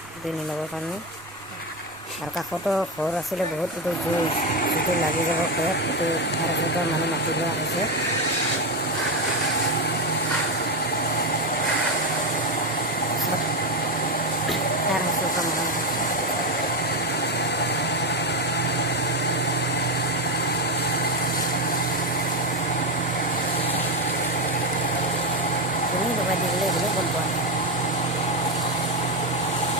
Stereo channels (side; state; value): both; normal; correlation 0.11